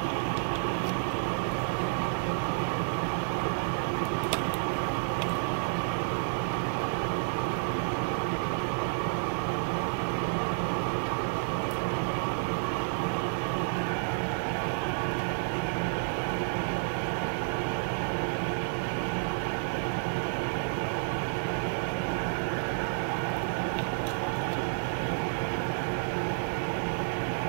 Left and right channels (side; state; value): left; silent; 58 dB below the other